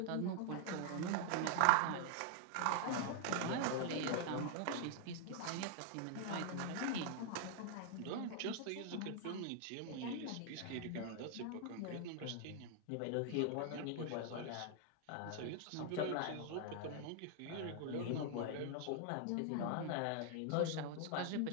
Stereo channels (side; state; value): both; different; correlation 0.00